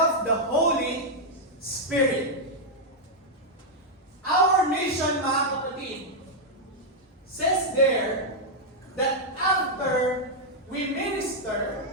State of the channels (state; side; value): normal; both; correlation -0.03